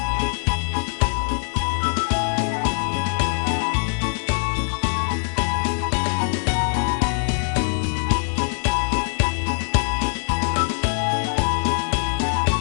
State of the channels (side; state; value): right; silent; digital silence